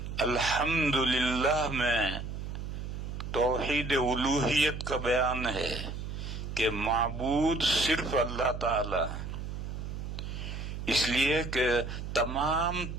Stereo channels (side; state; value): right; noise; hum, 6 dB below the sound